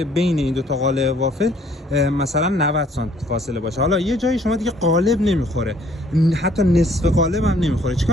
بین این دو تا قالب وافل مثلا 90 سانت فاصله باشه. حالا یه جایی شما دیگه قالب نمیخوره، حتی نصف قالب هم نمیخوره،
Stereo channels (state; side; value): normal; both; correlation 0.61